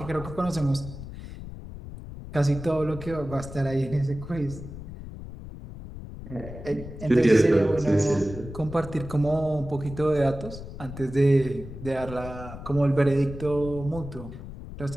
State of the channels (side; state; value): left; noise; rumble, 12 dB below the sound